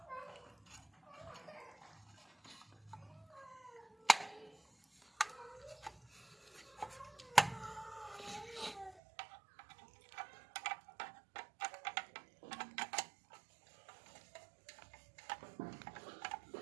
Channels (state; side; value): drops out; left; at 9.0 s